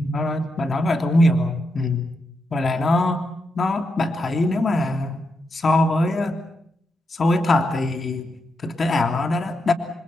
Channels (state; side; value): normal; both; correlation 0.84